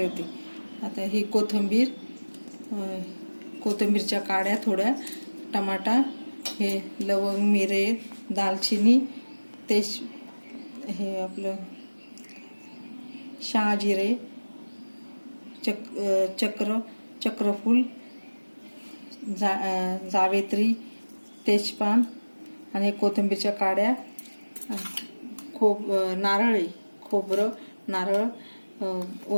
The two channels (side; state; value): both; inverted; correlation -1.00